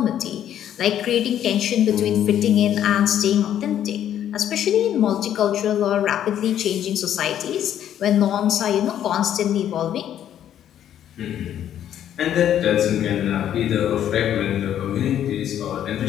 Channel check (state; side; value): quieter; right; 10.6 dB